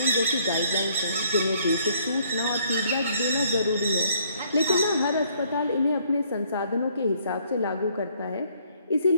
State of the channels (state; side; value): inverted; both; correlation -0.65